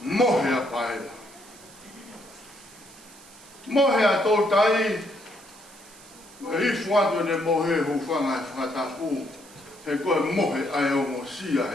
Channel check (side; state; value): right; noise; hiss, 22 dB below the sound